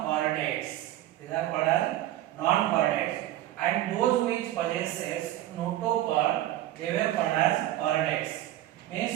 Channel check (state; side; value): quieter; left; 14.1 dB